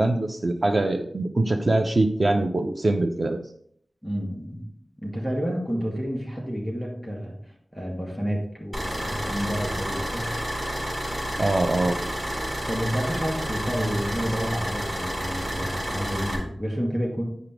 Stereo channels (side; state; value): both; normal; correlation 0.96